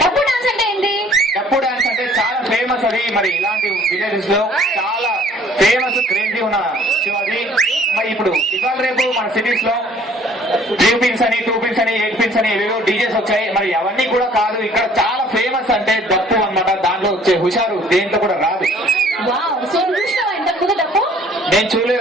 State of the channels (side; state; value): both; normal; correlation 0.56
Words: డప్పు డాన్స్ అంటే ఏంటి? డప్పు డాన్స్ అంటే చాలా ఫేమస్ అది. మరి ఇలాంటి విలేజెస్ లో చాలా ఫేమస్ క్రేజీ ఉన్న అది. మరి ఇప్పుడు ఇవాళ రేపు మన సిటీస్ లో 3 పిన్స్ అని 2 పిన్స్ అని 8 పిన్స్ అని ఏవేవో డీజేస్ వచ్చాయి. మరి అవన్నీ కూడా కాదు, ఇక్కడ చాలా ఫేమస్ అంటే డప్పు అన్నమాట. దాంట్లో వచ్చే హుషారు దేంట్లో కూడా రాదు. నేను